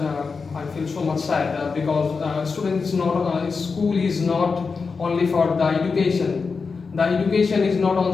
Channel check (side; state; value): right; quieter; 4.9 dB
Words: I feel so much sad because school is not only for the education. The education is not